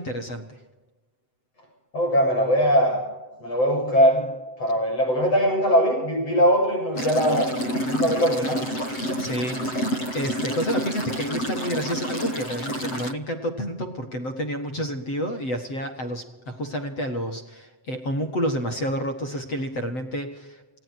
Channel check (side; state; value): right; late; 7.8 ms